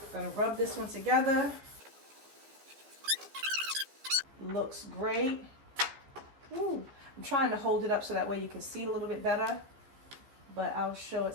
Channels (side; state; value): left; late; 15 ms